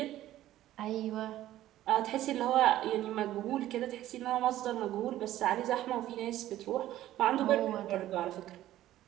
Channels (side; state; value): left; quieter; 13.8 dB